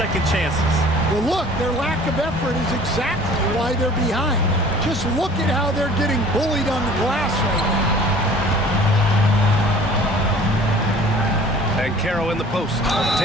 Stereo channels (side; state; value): both; normal; correlation 0.49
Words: chances. Well, look, their lack of effort is exactly why they're behind. Just look at how they're getting bullied on the glass right now. Banchero in the post.